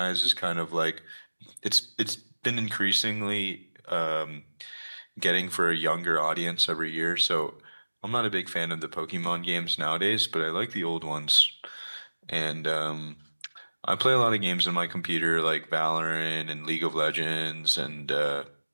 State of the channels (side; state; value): both; inverted; correlation -1.00